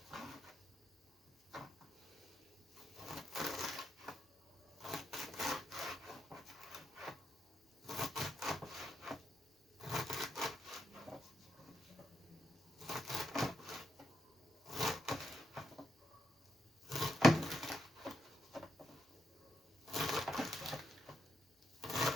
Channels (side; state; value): both; normal; correlation 0.81